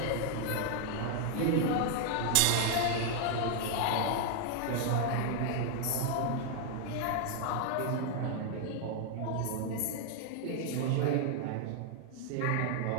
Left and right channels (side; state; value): both; different; correlation 0.00